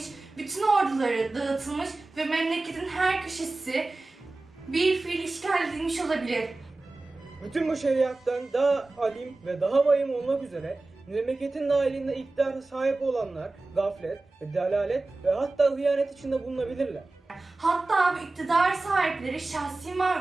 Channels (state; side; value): quieter; left; 3.2 dB